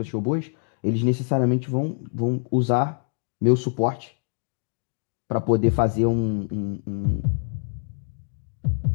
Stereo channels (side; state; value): right; silent; digital silence